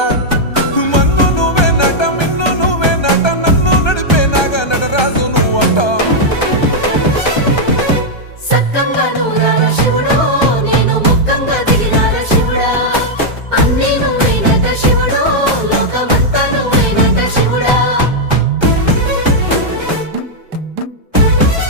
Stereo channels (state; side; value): late; right; 1.3 ms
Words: మన్ను నువ్వే నట మిన్ను నువ్వే నట నన్ను నడిపే నాగా నటరాజు నువ్వంట